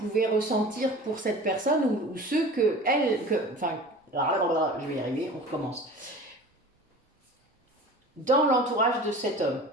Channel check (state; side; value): normal; both; correlation 0.39